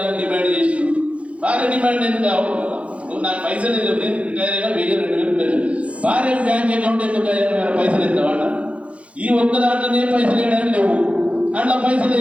డిమాండ్ చేసి, భార్య డిమాండ్ ఎందుకు కావు, నాకు పైసలు నేను రిటైర్ అయినా 1,000-2,000 పెన్షన్, భార్య బ్యాంక్ అకౌంట్ ఎందుకు పైసలు ఇస్తామంట. ఈ ఒక్క దాంట్లోనే పైసలు వేయడానికి లేవు, అట్లా పైసలు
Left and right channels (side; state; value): left; late; 0.063 ms